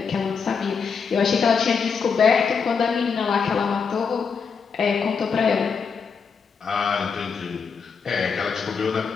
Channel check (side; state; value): right; quieter; 5.8 dB